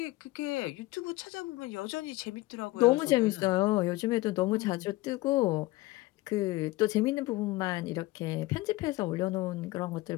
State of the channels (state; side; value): quieter; right; 19.5 dB